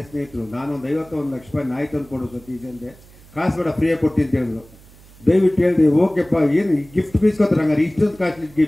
ಸ್ನೇಹಿತರು. ನಾನೊಂದು 51 ಲಕ್ಷ ರೂಪಾಯಿ ನಾಯಿ ತಂದು ಕೊಡು ಸತೀಶ್ ಅಂದೆ. ಕಾಸು ಬೇಡ, ಫ್ರೀಯಾಗಿ ಕೊಡ್ತೀನಿ ಅಂತ ಹೇಳಿದ್ರು. ದಯವಿಟ್ಟು ಹೇಳಿದೆ, ಓಕೆಪ್ಪ ಏನು ಗಿಫ್ಟ್ ಬೀಸ್ಕೊತಾರೆ, ಹಂಗಾರೆ ಇಷ್ಟೊಂದು ಕಾಸ್ಟ್ಲಿ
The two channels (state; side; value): noise; right; hum, 24 dB below the sound